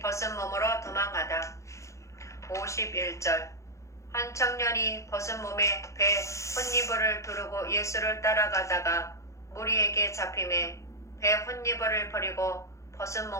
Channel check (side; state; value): right; late; 0.15 ms